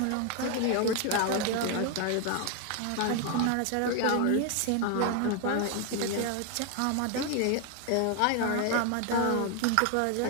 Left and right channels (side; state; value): both; different; correlation 0.01